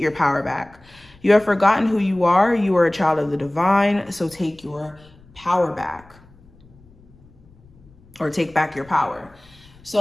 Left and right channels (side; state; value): left; noise; rumble, 27 dB below the sound